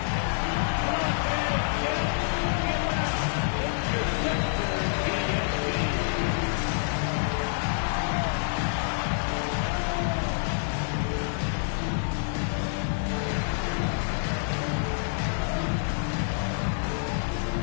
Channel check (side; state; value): right; silent; digital silence